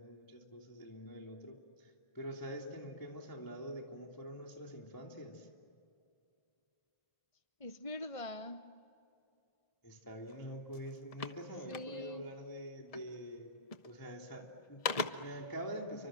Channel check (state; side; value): late; right; 1.7 ms